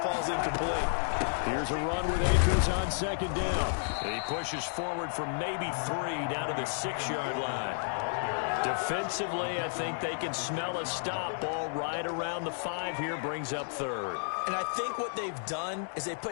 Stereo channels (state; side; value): silent; right; digital silence